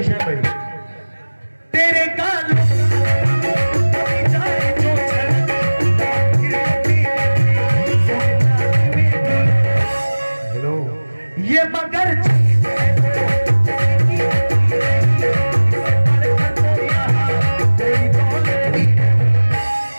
शान भाई। तेरे कानों हेलो, ये मगर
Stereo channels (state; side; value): inverted; both; correlation -1.00